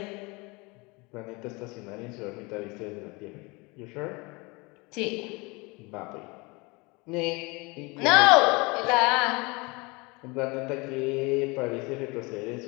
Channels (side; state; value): right; quieter; 26.3 dB